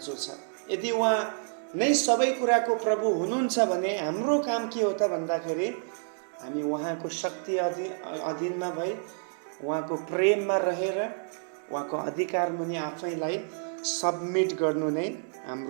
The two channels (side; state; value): left; silent; digital silence